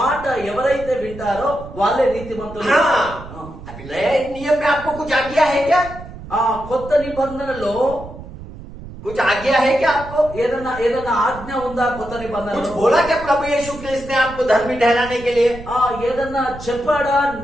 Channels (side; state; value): right; noise; rumble, 14 dB below the sound